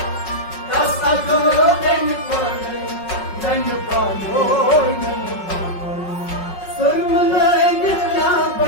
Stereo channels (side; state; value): right; late; 5.4 ms